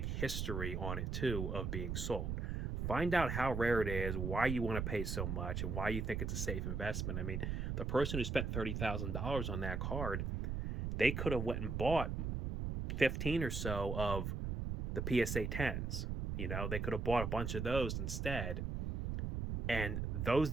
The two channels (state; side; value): noise; right; rumble, 2 dB below the sound